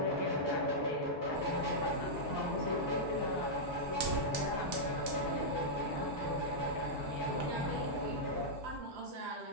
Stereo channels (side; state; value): both; normal; correlation -0.09